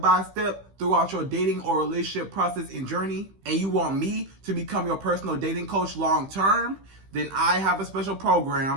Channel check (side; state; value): left; late; 15 ms